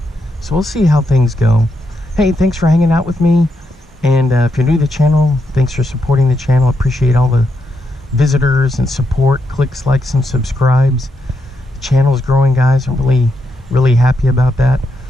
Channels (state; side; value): normal; both; correlation 0.82